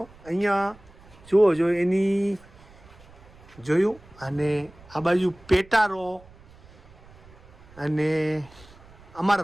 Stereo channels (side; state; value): right; noise; rumble, 24 dB below the sound